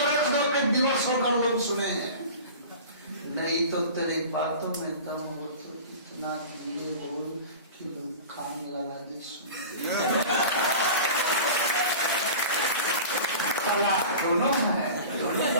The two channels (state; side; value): inverted; both; correlation -0.36